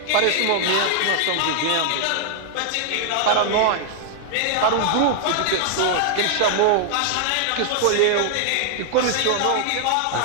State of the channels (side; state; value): both; different; correlation 0.00